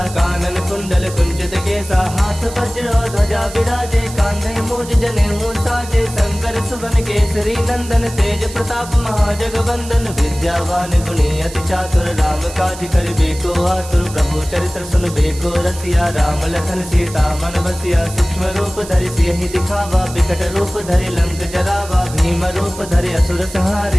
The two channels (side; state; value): right; noise; hiss, 14 dB below the sound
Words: कानन कुंडल कुंचित केसा। हाथ वज्र ध्वजा विराजे, कांधे मूज जनेऊ साजे। शंकर सुवन केसरी नंदन, तेज प्रताप महाजगवंदन। विद्यावान गुणी अति चातुर, राम काज करिबे को आतुर। प्रभु चरित्र सुनबे को रसिया, राम लखन सीता मन बसिया। सूक्ष्म रूप धरि सियहि दिखावा, विकट रूप धरि लंक जरावा। भीम रूप धरि असुर